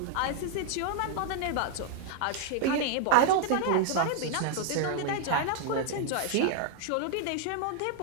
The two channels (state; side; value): different; both; correlation 0.00